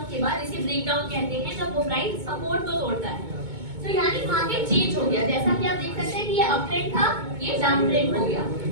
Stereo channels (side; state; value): left; late; 2.2 ms